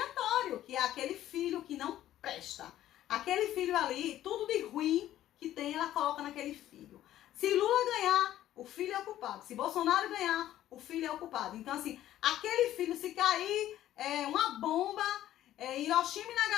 que é aquele filho que não presta. Aquele filho ali, tudo de ruim que tem, ela coloca naquele filho. Se Lula ganhar, o filho é o culpado. Se Bolsonaro ganhar, o filho é o culpado. Então, assim, aquele filho, se cair uma bomba, Hiroshima e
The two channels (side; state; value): right; quieter; 13.0 dB